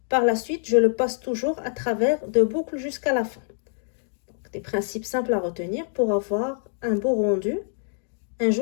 Par la suite, je le passe toujours à travers 2 boucles jusqu'à la fin. Donc, des principes simples à retenir pour avoir un beau rendu, un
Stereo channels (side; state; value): right; silent; digital silence